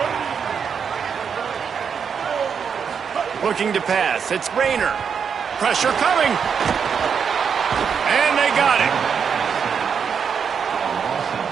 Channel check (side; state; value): left; quieter; 6.8 dB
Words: Looking to pass. It's Rayner. Pressure coming. And they got it.